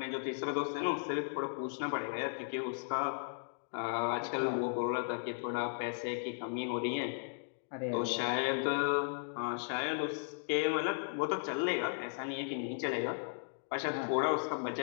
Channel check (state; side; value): silent; right; digital silence